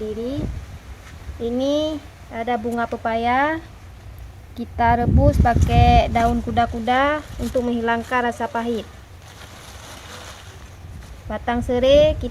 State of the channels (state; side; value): identical; both; correlation 1.00